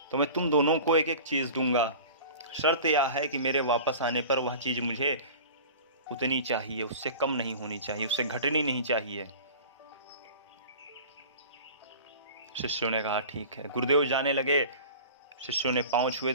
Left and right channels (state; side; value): inverted; both; correlation -0.39